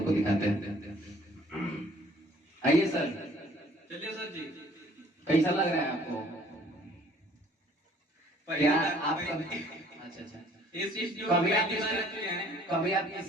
को दिखाते हैं। आइए सर, चलिए सर जी, कैसा लग रहा है आपको? क्या आप अच्छा कभी आप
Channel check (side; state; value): both; normal; correlation 0.57